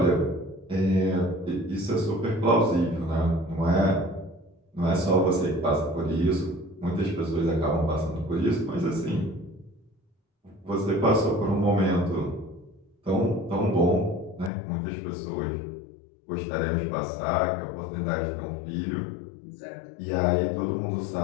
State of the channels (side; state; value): right; drops out; at 14.5 s